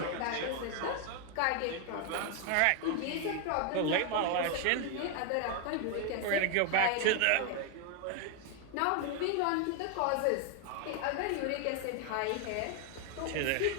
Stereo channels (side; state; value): both; different; correlation 0.00